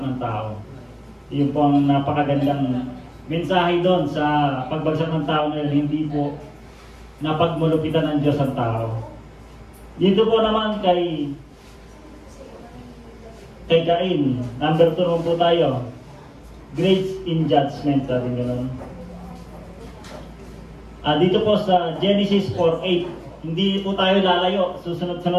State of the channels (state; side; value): identical; both; correlation 1.00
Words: ng tao. Iyon po ang napakagandang mensahe doon sa pagbagsak ng tao na yun, hindi po napagmulupitan ng Diyos ang tao. Dito po naman kay Cain, number 2 po tayo. Grace in judgment, sabi gano'n. Dito po sa Genesis 4:8, hindi po tayo lalayo,